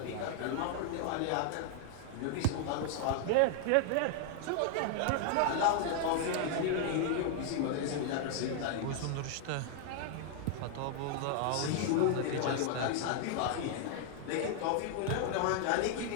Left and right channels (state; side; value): different; both; correlation 0.00